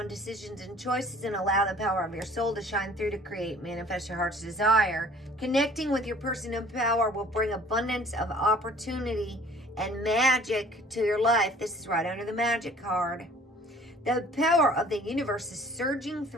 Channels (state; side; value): normal; both; correlation 0.52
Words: decisions and choices and allow the power of your soul to shine through to create, manifest your heart's desire. Connecting with your personal power will bring abundance of opportunity and magic to your life. This is right under the magic card. The power of the universe is surging